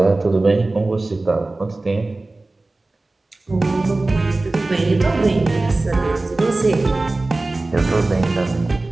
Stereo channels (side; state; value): left; quieter; 3.1 dB